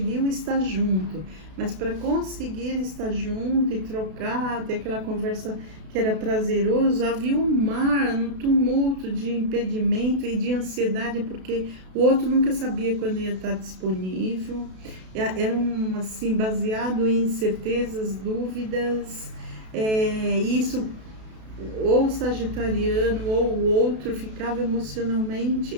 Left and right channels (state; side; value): late; left; 32 ms